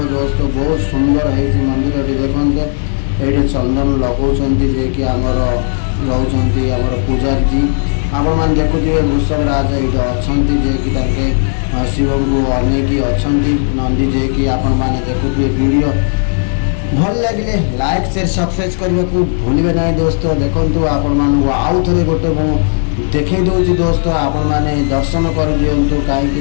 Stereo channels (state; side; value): silent; right; digital silence